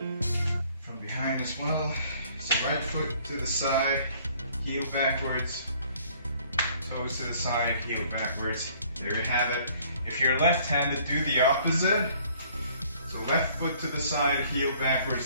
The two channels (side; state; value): both; inverted; correlation -0.58